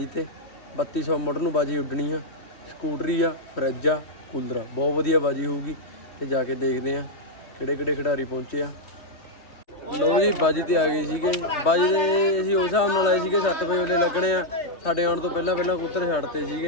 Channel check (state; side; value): late; right; 3.1 ms